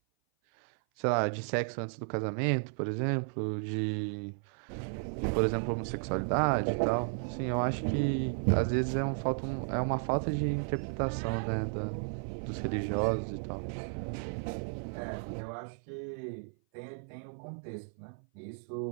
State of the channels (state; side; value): silent; left; 55 dB below the other